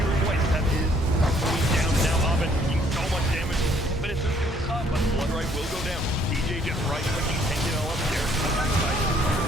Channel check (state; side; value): normal; both; correlation 0.63